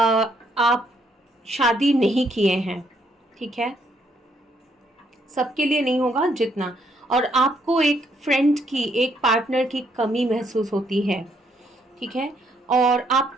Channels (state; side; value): normal; both; correlation 0.72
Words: शादी नहीं किए हैं, ठीक है। सबके लिए नहीं होगा जितना। और आपको एक फ्रेंड की, एक पार्टनर की कमी महसूस होती है, ठीक है। और